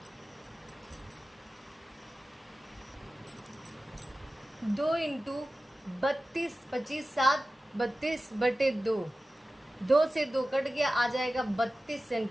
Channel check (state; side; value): normal; both; correlation 0.95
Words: 2 इंटू 32 25 7 32/2, 2 से 2 कट गया, आ जाएगा 32